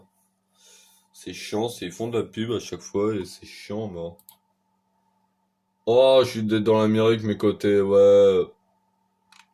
C'est chiant, ils font de la pub à chaque fois et c'est chiant, moi. Oh, je suis dans l'Amérique, mais côté, ouais...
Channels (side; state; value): both; identical; correlation 1.00